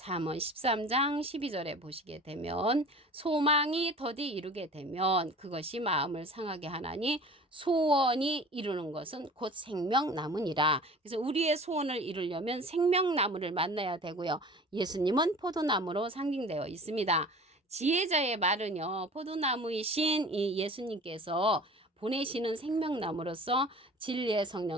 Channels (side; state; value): both; normal; correlation 0.42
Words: 13장 12절에 보시게 되면 소망이 더디 이루게 되면 그것이 마음을 상하게 하나니 소원이 이루는 것은 곧 생명나무니라. 그래서 우리의 소원을 이루려면 생명나무를 만나야 되고요. 예수님은 포도나무로 상징되어 있습니다. 지혜자의 말은요. 포도나무이신 이 예수님께서 보내시는 생명나무로서 진리의